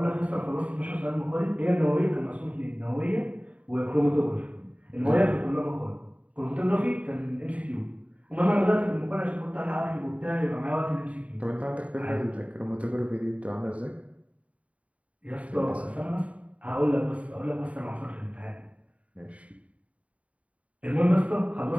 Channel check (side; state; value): left; late; 0.066 ms